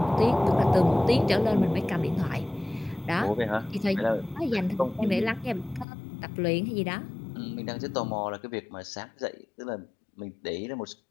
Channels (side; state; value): right; drops out; at 5.9 s